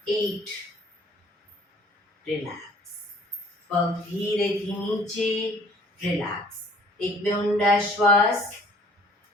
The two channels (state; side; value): normal; both; correlation 0.55